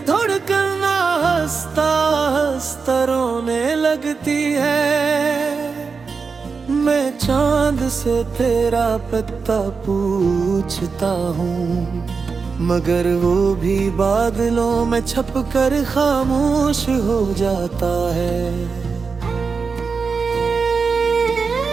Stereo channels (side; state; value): left; quieter; 5.0 dB